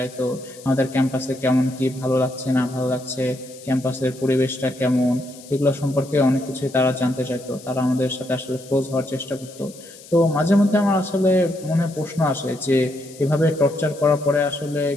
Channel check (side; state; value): left; noise; hiss, 20 dB below the sound